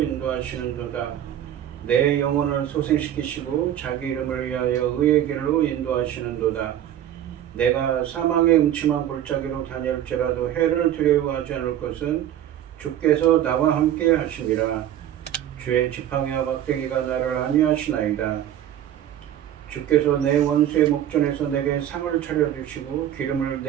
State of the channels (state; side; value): quieter; left; 11.1 dB